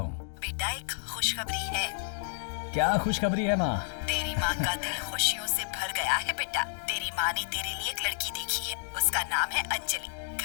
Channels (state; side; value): silent; right; digital silence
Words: बेटा, एक खुशखबरी है। क्या खुशखबरी है माँ? तेरी माँ का दिल खुशियों से भर गया है बेटा। तेरी माँ ने तेरे लिए एक लड़की देखी है, उसका नाम है अंजलि।